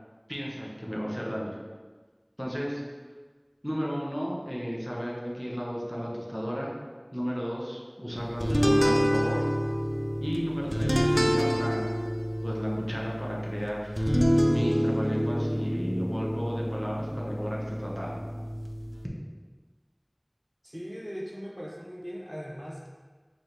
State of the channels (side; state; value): both; identical; correlation 1.00